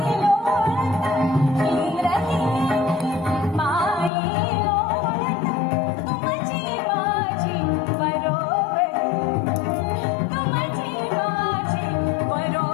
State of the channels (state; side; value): drops out; right; at 4.1 s